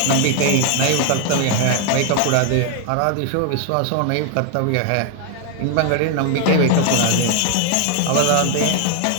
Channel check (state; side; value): different; both; correlation 0.00